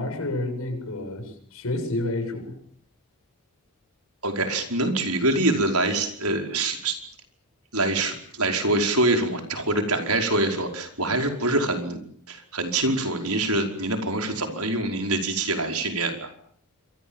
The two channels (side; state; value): both; normal; correlation 0.01